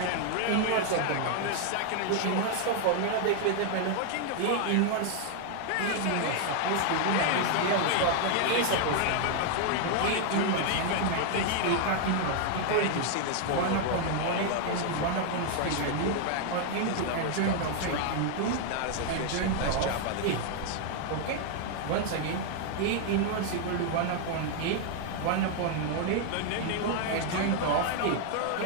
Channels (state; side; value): different; both; correlation 0.00